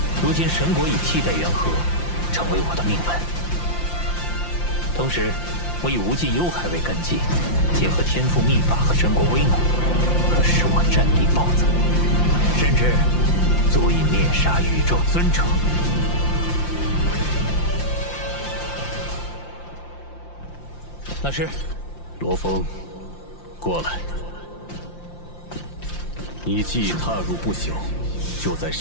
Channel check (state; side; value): late; right; 5.8 ms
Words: 如今神国以替代元和，成为我的命门。同时，我以无尽幽海为根基，结合天赋秘法和神国威能，可使我战力暴增，甚至足以灭杀宇宙尊者。老师，罗峰，过来。你既踏入不朽，就在